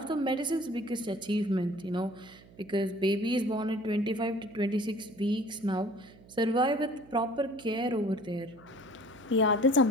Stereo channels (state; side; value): noise; right; hum, 23 dB below the sound